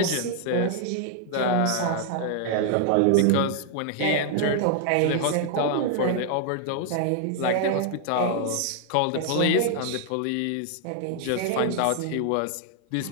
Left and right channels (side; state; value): both; different; correlation 0.00